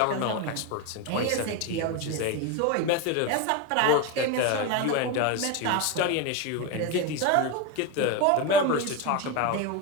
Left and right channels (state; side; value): different; both; correlation 0.03